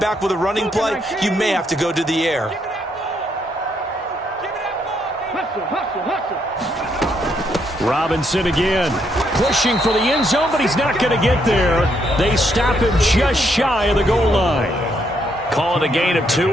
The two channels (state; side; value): normal; both; correlation 0.74